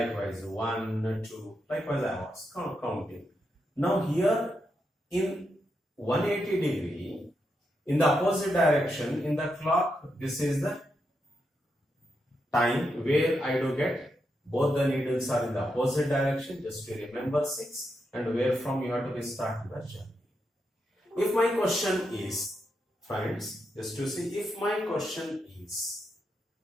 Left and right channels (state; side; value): normal; both; correlation 0.84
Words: 1, 2, likewise I was counting. Now here in 180 degree, in the opposite direction, in the clock, this is the time where I do get both the needles are in the opposite direction, just to remember 6, and where from you have to start the journey. If my question is, friends, just to see, if my question is,